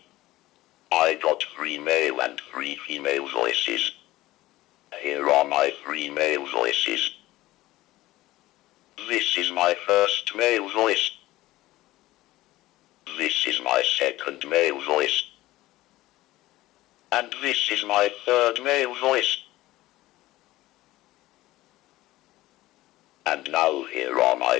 I got 3 male and 3 female voices. Here are my 3 male voices. This is my first male voice. This is my second male voice. And this is my third male voice. And now here are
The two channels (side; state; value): right; quieter; 17.2 dB